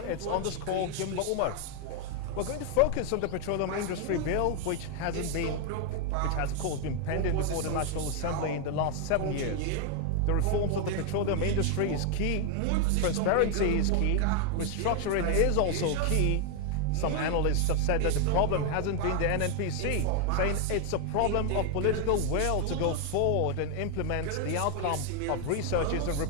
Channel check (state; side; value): different; both; correlation 0.01